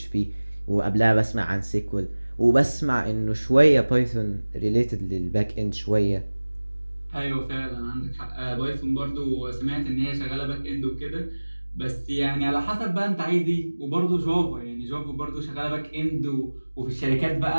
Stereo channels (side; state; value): both; inverted; correlation -1.00